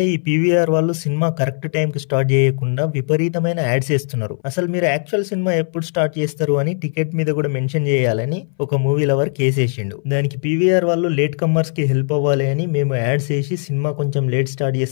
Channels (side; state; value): right; silent; 62 dB below the other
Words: ఈ పీవీఆర్ వాళ్ళు సినిమా కరెక్ట్ టైం కి స్టార్ట్ చేయకుండా విపరీతమైన యాడ్స్ వేస్తున్నారు. అసలు మీరు యాక్చువల్ సినిమా ఎప్పుడు స్టార్ట్ చేస్తారు అని టికెట్ మీద కూడా మెన్షన్ చేయాలని ఒక మూవీ లవర్ కేసేసిండు. దానికి పీవీఆర్ వాళ్ళు లేట్ కమ్మర్స్ కి హెల్ప్ అవ్వాలి అని మేము యాడ్స్ వేసి సినిమా కొంచెం లేట్ స్టార్ట్